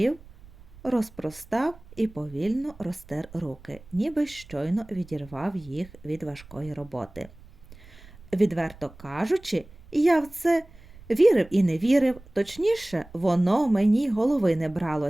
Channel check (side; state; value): right; noise; rumble, 22 dB below the sound